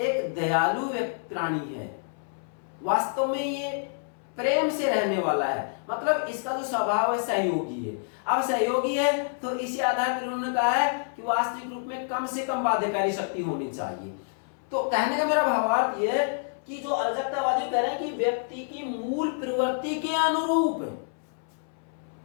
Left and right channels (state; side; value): silent; right; 60 dB below the other